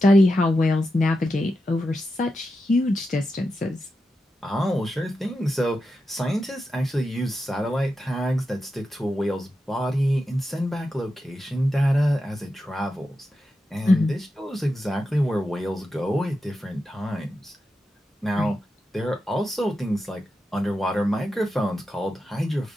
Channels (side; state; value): both; normal; correlation 0.89